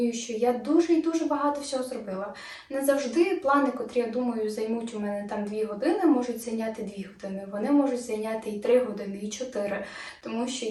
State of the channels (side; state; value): both; identical; correlation 1.00